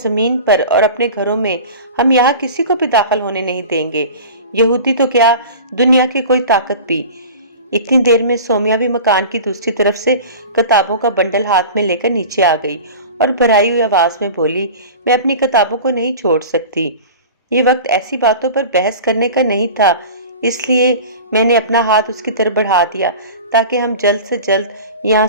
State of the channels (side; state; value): both; inverted; correlation -0.36